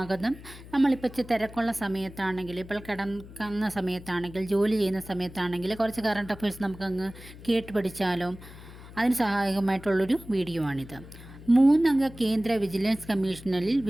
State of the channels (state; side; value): noise; left; hum, 17 dB below the sound